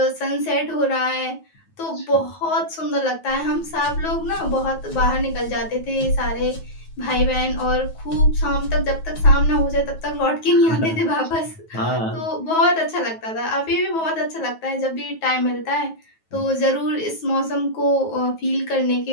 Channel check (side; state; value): right; late; 9.3 ms